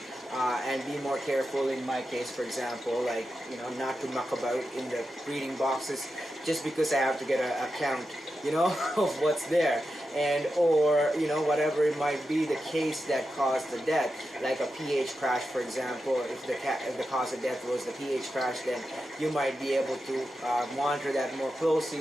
and be more careful. In my case, for example, like, you know, not to muck about in the breeding boxes just because I have to get a count, you know, of what's there, and or, you know, whatever it might be the case that caused the death, like a pH crash, for example. If the cause of death was the pH crash, then you might be able to monitor that more closely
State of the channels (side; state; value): both; normal; correlation 0.89